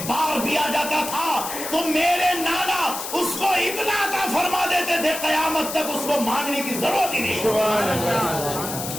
بار بھی آ جاتا تھا تو میرے نانا اس کو اتنا عطا فرما دیتے تھے قیامت تک اس کو مانگنے کی ضرورت ہی نہیں. سبحان اللہ.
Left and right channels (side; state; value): left; noise; hiss, 7 dB below the sound